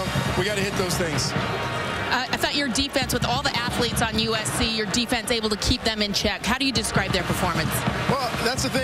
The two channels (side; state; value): both; identical; correlation 1.00